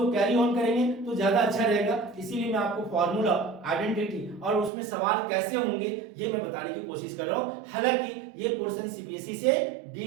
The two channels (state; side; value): drops out; left; at 4.7 s